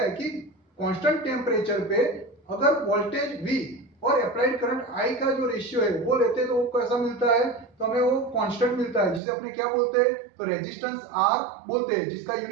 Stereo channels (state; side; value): drops out; left; at 9.2 s